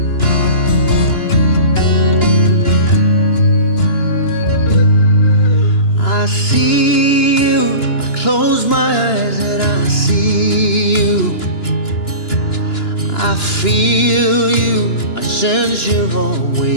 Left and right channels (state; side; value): late; right; 2.9 ms